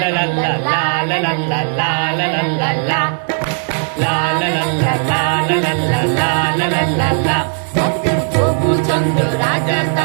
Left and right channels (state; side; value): silent; left; 68 dB below the other